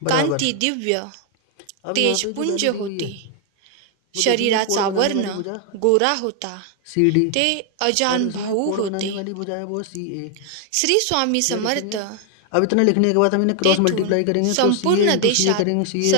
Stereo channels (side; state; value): both; different; correlation 0.00